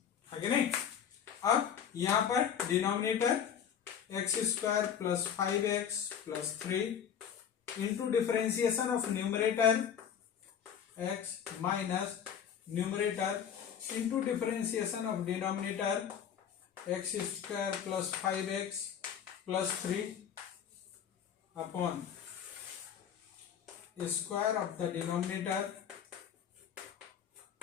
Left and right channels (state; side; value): quieter; right; 8.4 dB